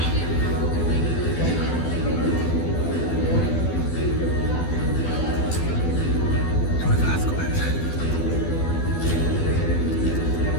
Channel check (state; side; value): late; right; 12 ms